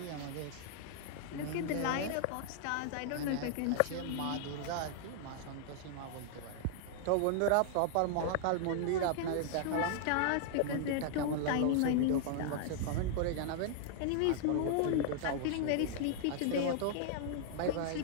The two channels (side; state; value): both; different; correlation -0.01